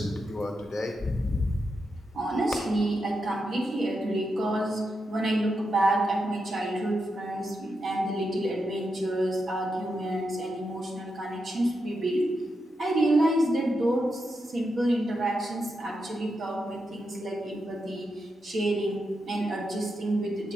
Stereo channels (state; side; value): normal; both; correlation 0.86